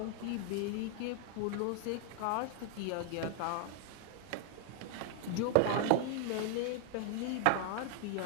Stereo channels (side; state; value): both; different; correlation 0.00